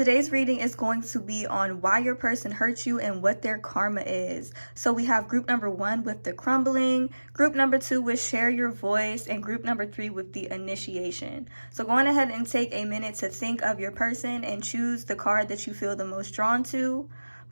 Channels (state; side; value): inverted; both; correlation -1.00